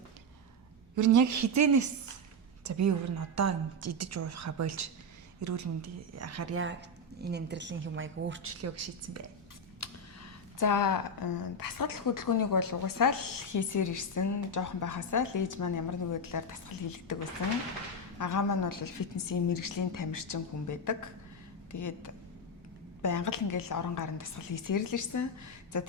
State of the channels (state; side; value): normal; both; correlation 0.06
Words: Ер нь яг хизэнээс за би өөр нь одоо идэж уухаа болж эрүүл мэндийн анхаарья энэ амьдралын хэм маяг өөрчлөё гэж шийдсэн бай. За дасгал хөдөлгөөнийг бол угсаал хийсээр ирсэн. Жохон байхасаа л ээж маань ямар нэг байдлаар дасгал хийлгдэг байсан. Агаа маань бол фитнесийн мэрэгжлийн тамирчин хүн байдаг. Тэгээд байнга л ингээл орон гарын дасгал хийсээр л ирсэн. За